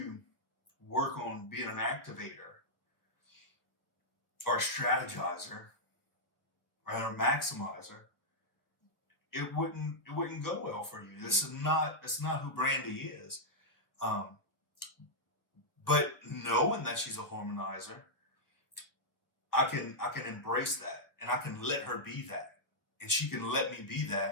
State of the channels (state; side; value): late; right; 1.2 ms